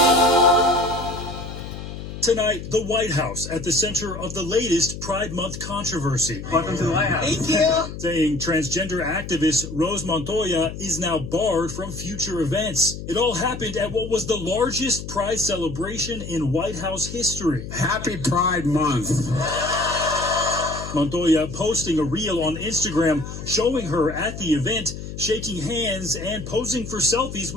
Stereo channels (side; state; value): left; noise; hum, 9 dB below the sound